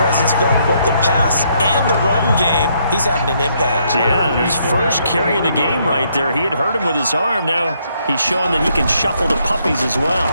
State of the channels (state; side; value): inverted; both; correlation -0.72